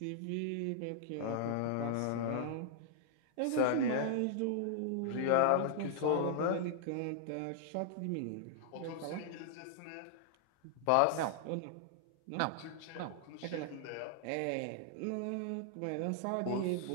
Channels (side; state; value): both; different; correlation -0.01